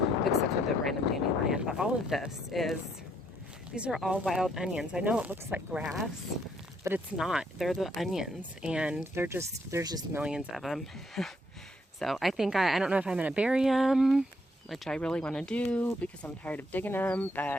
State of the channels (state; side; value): normal; both; correlation 0.71